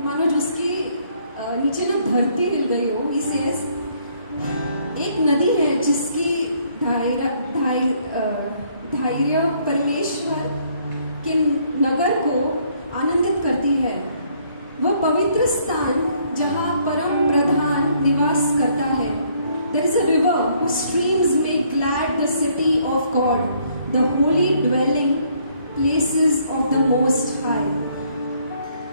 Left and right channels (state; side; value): inverted; both; correlation -0.66